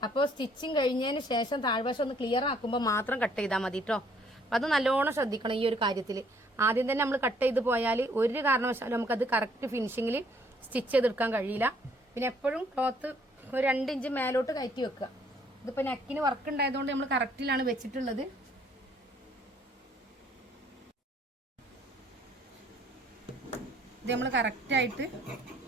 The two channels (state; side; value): normal; both; correlation 0.63